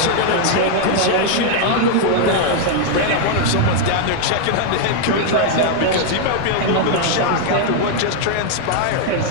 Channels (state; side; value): different; both; correlation 0.00